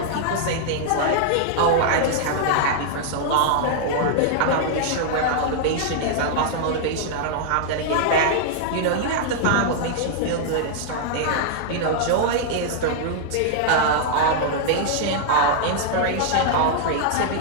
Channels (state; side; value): different; both; correlation -0.01